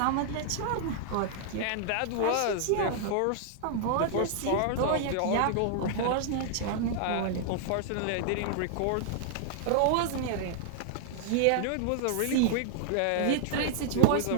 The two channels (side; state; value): both; different; correlation -0.01